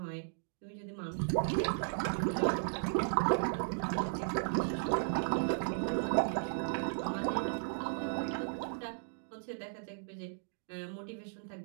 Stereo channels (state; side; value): silent; left; digital silence